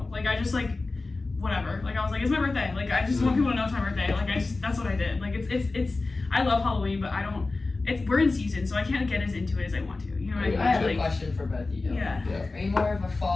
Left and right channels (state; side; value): quieter; right; 3.5 dB